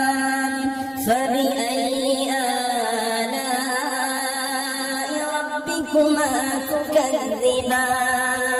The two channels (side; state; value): both; identical; correlation 1.00